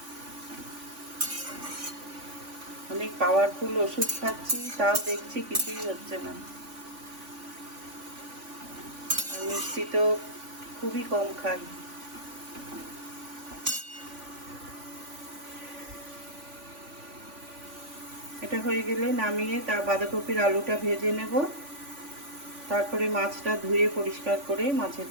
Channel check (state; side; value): late; left; 3.5 ms